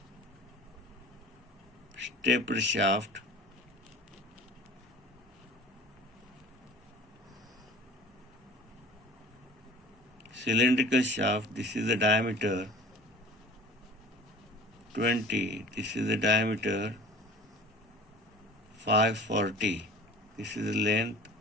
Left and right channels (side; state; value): both; normal; correlation 0.43